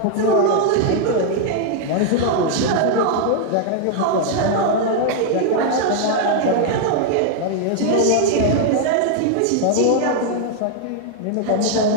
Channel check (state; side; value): different; both; correlation 0.00